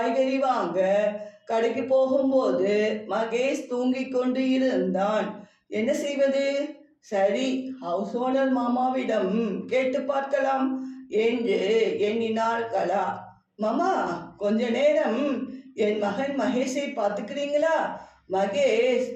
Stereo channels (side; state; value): both; identical; correlation 1.00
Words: வாங்க கடைக்கு போகும்போது மகேஷ் தூங்கிக் கொண்டு இருந்தான். என்ன செய்வது? சரி, ஹவுஸ் ஓனர் மாமாவிடம் கேட்டு பார்க்கலாம் என்று எண்ணினாள் கலா. மாமா, கொஞ்ச நேரம் என் மகன் மகேஷை பார்த்துக்கிறீங்களா? மகேஷ்